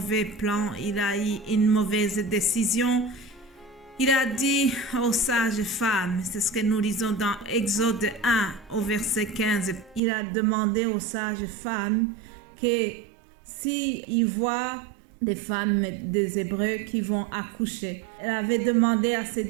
plan, il a eu une mauvaise décision. Il a dit aux sages femmes, c'est ce que nous lisons dans Exode 1 au verset 15, il a demandé aux sages femmes que s'ils voient des femmes des Hébreux qui vont accoucher, elle avait demandé à ces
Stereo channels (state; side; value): drops out; left; at 10.0 s